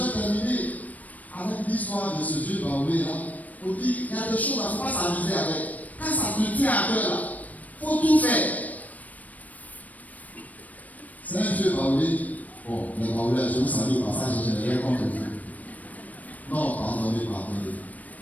terminer avec l'histoire de ce vieux baoulé là. On dit, il y a des choses, il ne faut pas s'amuser avec. Quand ça te tient à cœur là, il faut tout faire. C'est un vieux baoulé. Bon, les baoulés, je vous salue au passage, je n'ai rien contre vous. Non, pardonnez. Voilà.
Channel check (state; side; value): late; right; 0.074 ms